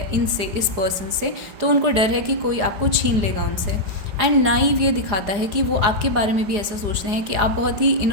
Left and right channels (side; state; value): left; late; 4.8 ms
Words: इनसे, इस पर्सन से। तो उनको डर है कि कोई आपको छीन लेगा उनसे। एंड नाइव ये दिखाता है कि वो आपके बारे में भी ऐसा सोचते हैं कि आप बहुत ही